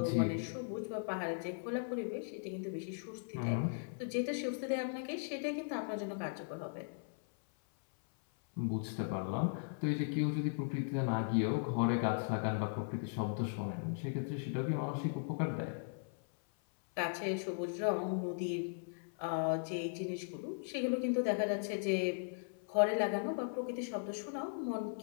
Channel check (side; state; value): right; silent; 52 dB below the other